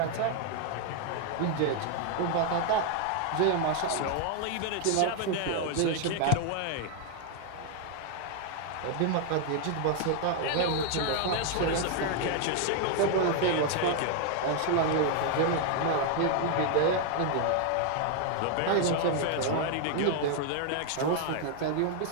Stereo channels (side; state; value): both; different; correlation 0.00